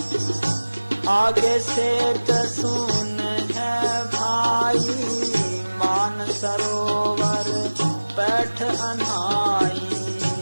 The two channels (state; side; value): inverted; both; correlation -1.00